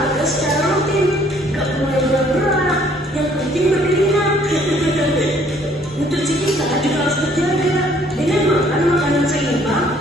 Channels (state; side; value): normal; both; correlation 0.61